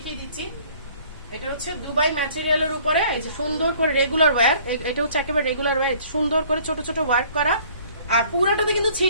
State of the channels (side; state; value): both; inverted; correlation -0.55